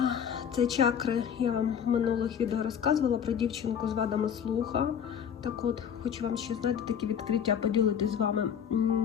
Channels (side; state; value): right; quieter; 8.1 dB